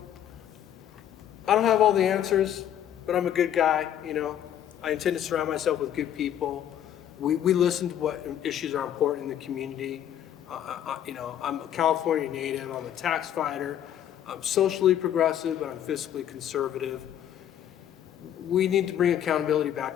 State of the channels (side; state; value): right; quieter; 10.5 dB